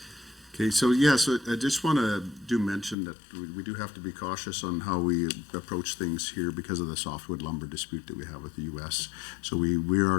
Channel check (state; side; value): drops out; right; at 3.0 s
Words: Okay, so I just want to mention that we do have to be cautious on how we approach things here because of the softwood lumber dispute that we have with the U.S. So we